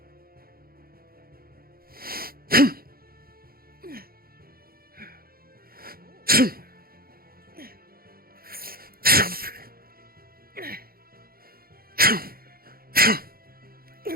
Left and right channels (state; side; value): late; left; 0.43 ms